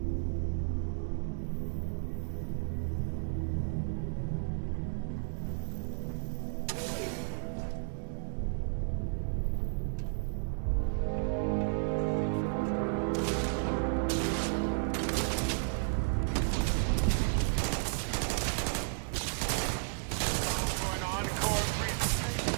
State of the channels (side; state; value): left; silent; digital silence